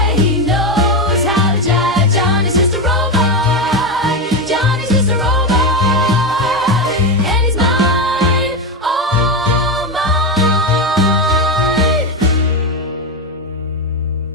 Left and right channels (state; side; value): normal; both; correlation 0.12